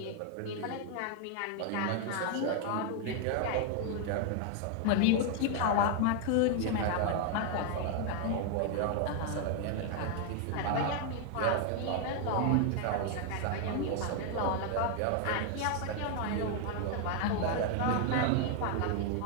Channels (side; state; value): both; different; correlation 0.00